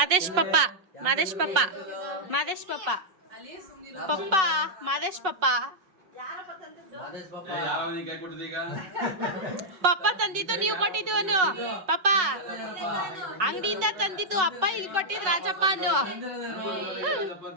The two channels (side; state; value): left; late; 5.4 ms